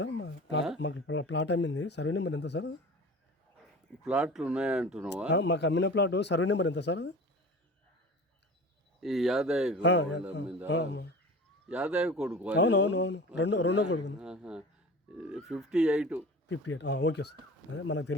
మాకు ప్లాట్ అమ్మింది, సర్వే నెంబర్ ఎంత సార్? ప్లాట్లు ఉన్నాయంటున్నావా? మాకు అమ్మిన ప్లాట్ సర్వే నెంబర్ ఎంత సార్? ఈ యాదయ్య యాదయ్య కొడుకు. అవునవునవును, రెండో కొడుకు. 58. ఓకే సార్, అదే మనకు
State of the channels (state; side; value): normal; both; correlation 0.37